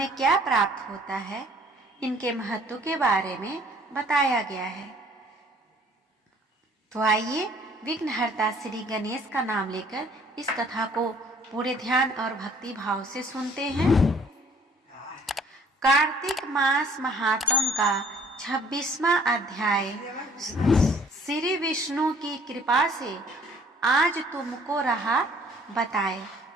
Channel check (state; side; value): normal; both; correlation 0.57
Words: क्या प्राप्त होता है, इनके महत्व के बारे में बताया गया है। तो आइए विघ्नहर्ता श्री गणेश का नाम लेकर इस कथा को पूरे ध्यान और भक्ति भाव से सुनते हैं। कार्तिक मास महात्म का 26वां अध्याय। श्री विष्णु की कृपा से आज तुमको रहा बताए।